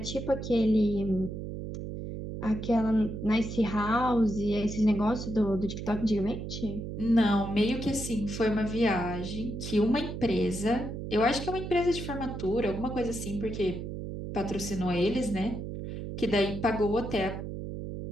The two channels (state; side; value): noise; right; hum, 7 dB below the sound